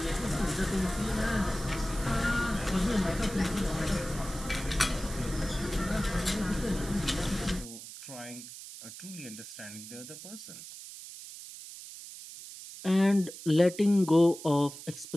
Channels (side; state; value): right; noise; hiss, 13 dB below the sound